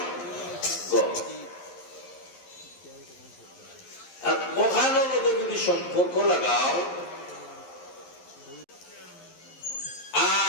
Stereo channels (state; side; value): late; right; 11 ms